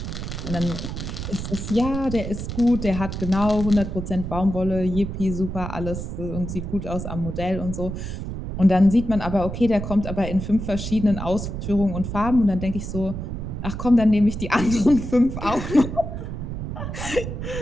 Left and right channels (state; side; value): noise; right; rumble, 6 dB below the sound